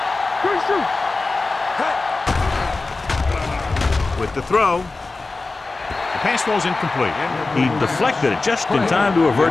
Good shoot. with the throw. The pass falls incomplete. He deflected it just in time to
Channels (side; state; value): right; quieter; 3.6 dB